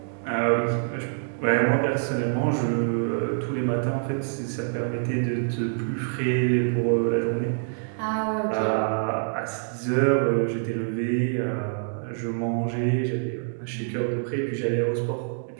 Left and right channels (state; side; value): silent; left; digital silence